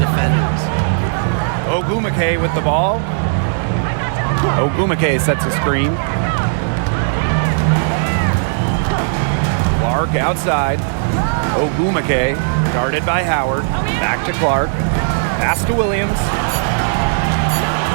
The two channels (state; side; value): silent; left; digital silence